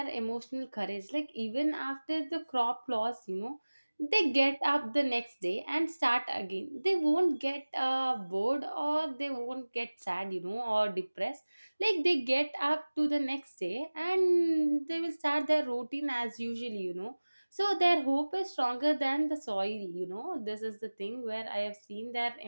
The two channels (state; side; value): inverted; both; correlation -1.00